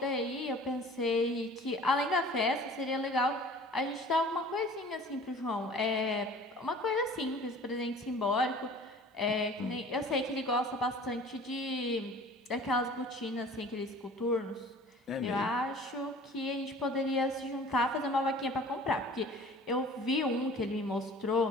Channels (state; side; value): normal; both; correlation 0.46